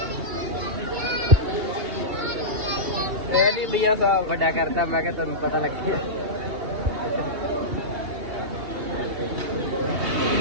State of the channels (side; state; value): left; late; 2.8 ms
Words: ਇੰਡੀਆ ਦਾ ਵੱਡਾ ਕਰਦਾ ਮੈਂ ਕਿਹਾ ਤੁਹਾਨੂੰ ਪਤਾ ਲੱਗੇ